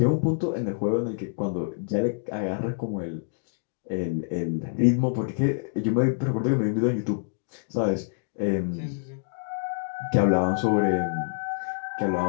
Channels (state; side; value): silent; right; digital silence